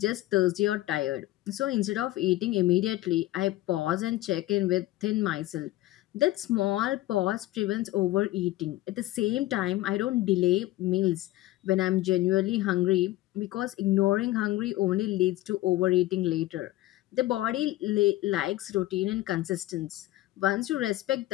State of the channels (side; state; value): right; quieter; 16.5 dB